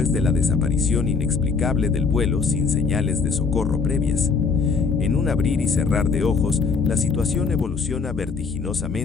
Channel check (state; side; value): quieter; right; 4.9 dB